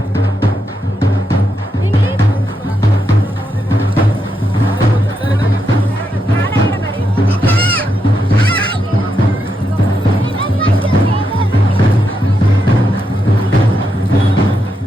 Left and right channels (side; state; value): both; normal; correlation 0.83